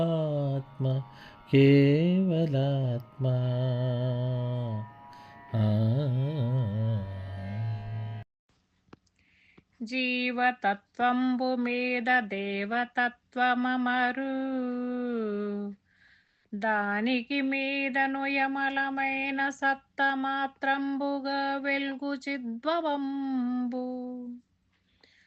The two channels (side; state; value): both; identical; correlation 1.00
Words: కేవలాత్మ. జీవతత్వంబు మీద దేవతత్వమమరు దానికి మీదను యమలమైన సత్తమాత్రంబుగా వెల్గు చిద్భవంబు